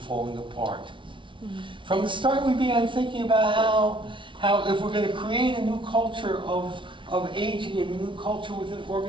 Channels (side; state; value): left; late; 0.24 ms